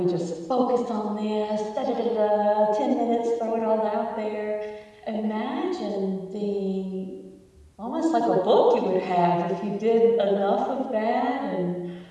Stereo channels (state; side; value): identical; both; correlation 1.00